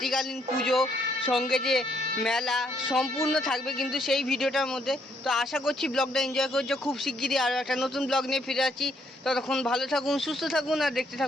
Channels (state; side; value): normal; both; correlation 0.71